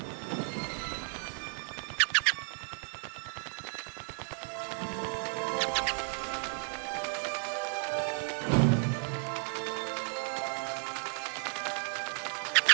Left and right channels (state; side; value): silent; left; 55 dB below the other